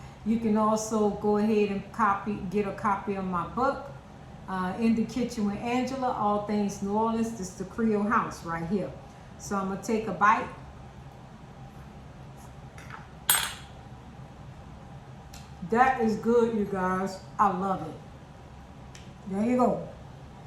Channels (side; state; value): both; identical; correlation 1.00